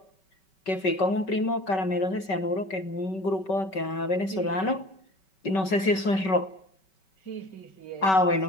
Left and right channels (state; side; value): late; right; 5.3 ms